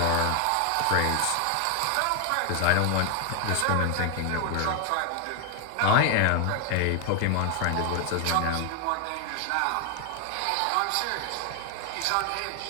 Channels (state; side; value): different; both; correlation 0.00